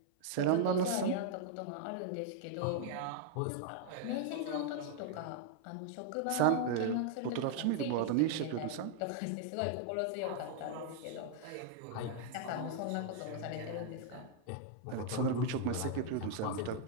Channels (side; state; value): both; different; correlation -0.01